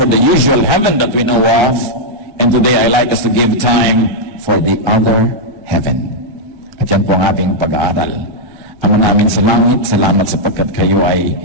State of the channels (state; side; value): late; left; 1.3 ms